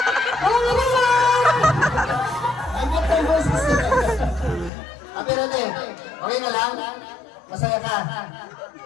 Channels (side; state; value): right; drops out; at 4.7 s